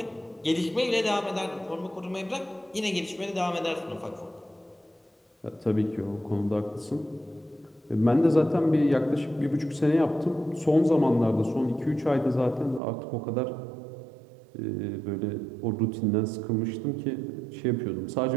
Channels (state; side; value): drops out; left; at 12.8 s